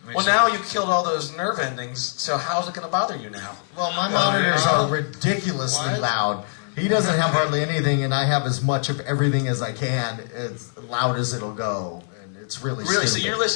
Well, now you killed all those nerve endings, so how's it going to bother you now? Well, my monitors are ridiculously loud. He doesn't have hardly anything, and I have as much of everything as I can, as loud as it'll go. And it's really so stupid. you're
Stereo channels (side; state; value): right; silent; digital silence